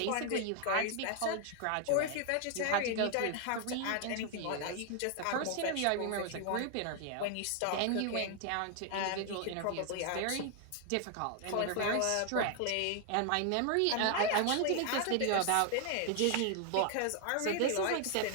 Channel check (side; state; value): both; different; correlation 0.00